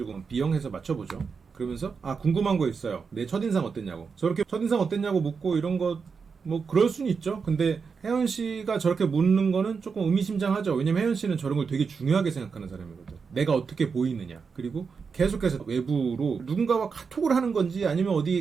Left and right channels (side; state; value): left; quieter; 5.5 dB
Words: 비영해서 맞춰보죠. 그러면서 궁금한 거 있어요. 내 첫인상 어땠냐고. 저렇게 첫인상 어땠냐고 묻고 이런 거 뭐 그럴 수는 있죠. 근데 혜연 씨가 저렇게 묻는 거는 조금 의미심장하죠. 왜냐면 혜연 씨는 저런 걸 되게 중요하게 생각하는 사람이거든. 내가 어떻게 보이느냐. 그리고 계속해서 외부로 누군가와 카톡을 하는 건지 아니면